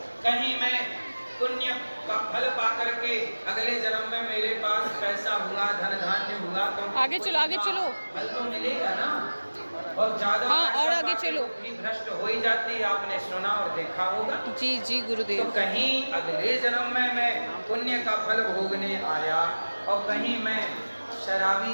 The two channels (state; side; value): inverted; both; correlation -1.00